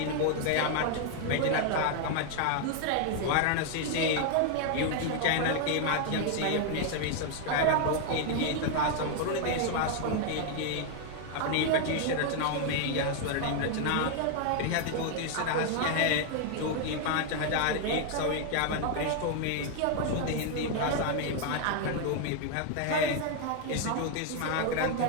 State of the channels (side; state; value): both; different; correlation 0.00